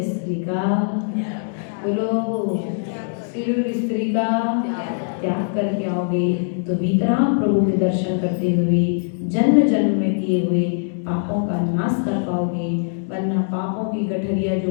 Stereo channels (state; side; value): silent; right; digital silence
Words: स्त्री का, बोलो श्री और स्त्री का त्याग करके आओगे तो भीतराम प्रभु के दर्शन करते हुए जन्म जन्म में किए हुए पापों का नाश कर पाओगे। वरना पापों की गठरिया जो